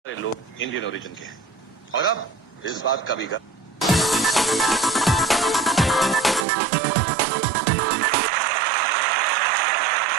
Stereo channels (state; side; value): drops out; left; at 6.5 s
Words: सारे लोग Indian origin के हैं और अब इस बात का भी कुछ